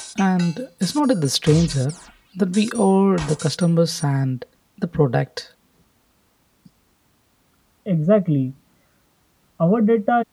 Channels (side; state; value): both; identical; correlation 1.00